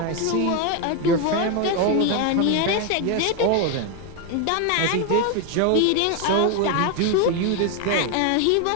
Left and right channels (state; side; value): different; both; correlation 0.01